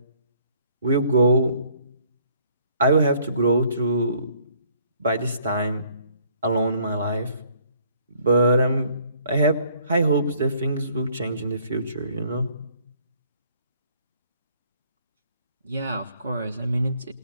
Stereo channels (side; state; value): both; inverted; correlation -0.62